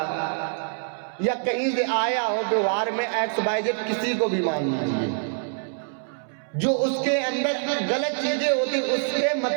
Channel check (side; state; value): left; silent; 62 dB below the other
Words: या कहीं से आया हो, व्यवहार में XYZ किसी को भी मान लीजिए, जो उसके अंदर गलत चीजें होती, उसके